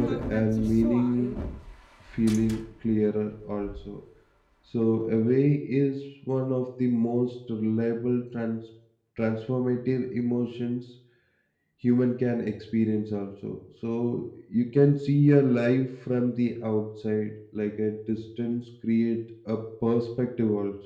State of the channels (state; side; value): identical; both; correlation 1.00